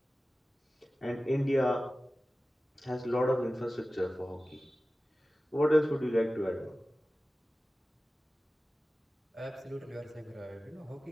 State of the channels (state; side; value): normal; both; correlation 0.96